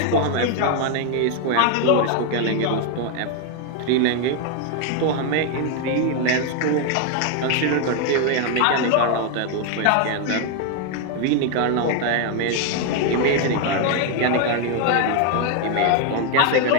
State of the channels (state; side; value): different; both; correlation 0.01